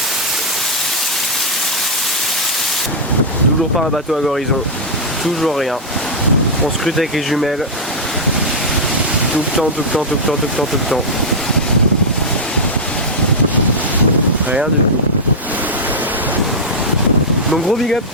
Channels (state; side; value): normal; both; correlation -0.05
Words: toujours pas un bateau à l'horizon. Toujours rien. On scrute avec les jumelles. Tout le temps, tout le temps, tout le temps, tout le temps, tout le temps. Rien du tout. Donc gros big up.